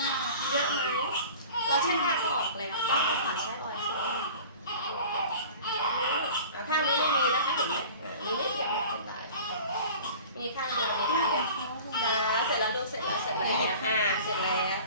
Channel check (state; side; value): inverted; both; correlation -0.42